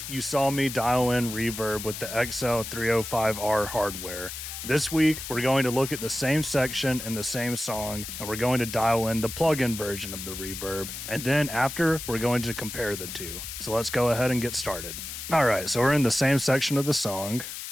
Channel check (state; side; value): noise; left; hiss, 8 dB below the sound